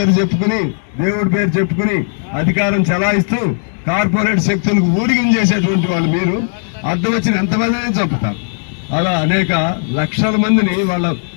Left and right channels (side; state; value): right; silent; 69 dB below the other